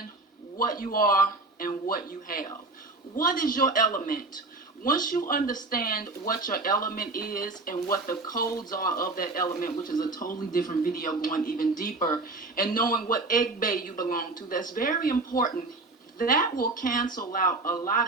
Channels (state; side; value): quieter; left; 3.2 dB